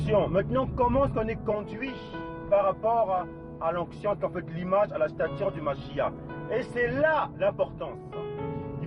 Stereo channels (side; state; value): both; identical; correlation 1.00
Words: maintenant comment est-ce qu'on est conduit par rapport à l'onction, qui en fait l'image, à la stature du Mashiach. Et c'est là l'importance.